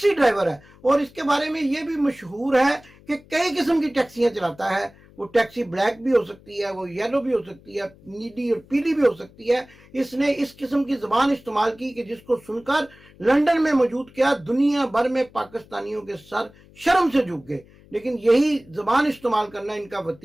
ڈرائیور ہے، اور اس کے بارے میں یہ بھی مشہور ہے کہ کئی قسم کی ٹیکسیاں چلاتا ہے. وہ ٹیکسی بلیک بھی ہو سکتی ہے، وہ یلو بھی ہو سکتی ہے، نیلی اور پیلی بھی ہو سکتی ہے. اس نے اس قسم کی زبان استعمال کی کہ جس کو سن کر لندن میں موجود کیا دنیا بھر میں پاکستانیوں کے سر شرم سے جھک گئے. لیکن یہی زبان استعمال کرنا ان کا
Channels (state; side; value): noise; left; hum, 25 dB below the sound